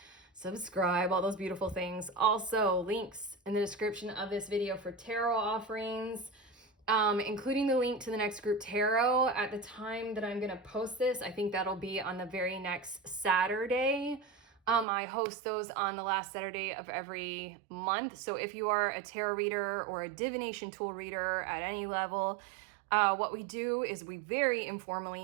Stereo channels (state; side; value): drops out; left; at 14.9 s